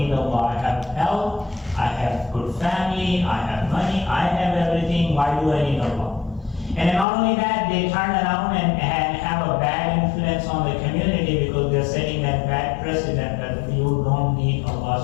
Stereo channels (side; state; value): right; drops out; at 7.1 s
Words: Allah, I have health, I have good family, I have money, I have everything, why do I need Allah? And then not only that, they turn around and have a bad influence on the community because they're setting that bad precedent that you don't need